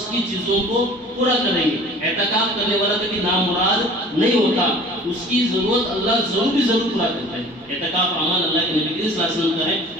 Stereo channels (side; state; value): both; normal; correlation 0.46